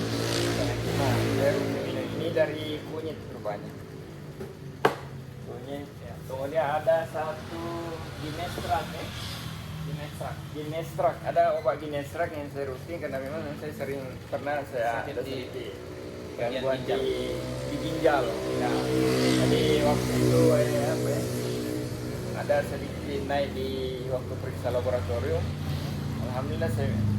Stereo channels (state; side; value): identical; both; correlation 1.00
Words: Penyakit mah. Saya minum ini dari kunyit rupanya. Kunyit. Ya. Kemudian ada satu ginestrat ya. Ginestrak, ada obat ginestrak yang saya rutin karena memang saya sering pernah saya ada sedikit gangguan di ginjal. Nah, jadi waktu itu ada sedikit naik di waktu periksa laboratorium. Alhamdulillah